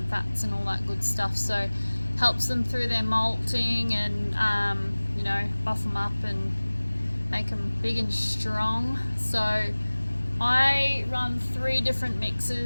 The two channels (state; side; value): inverted; both; correlation -1.00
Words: fats and all that good stuff. So helps them through their molting and, you know, buff them up and make them big and strong. So I run 3 different